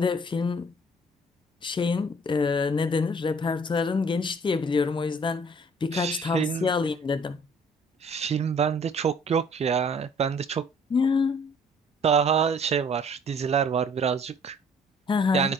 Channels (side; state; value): both; normal; correlation 0.56